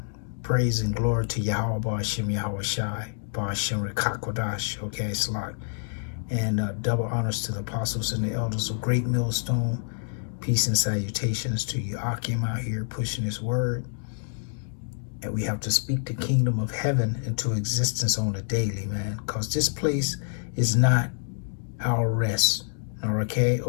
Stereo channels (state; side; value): silent; right; digital silence